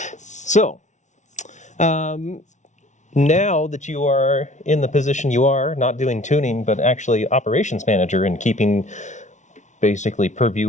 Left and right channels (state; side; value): late; right; 0.35 ms